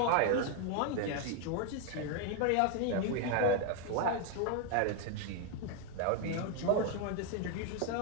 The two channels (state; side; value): different; both; correlation 0.01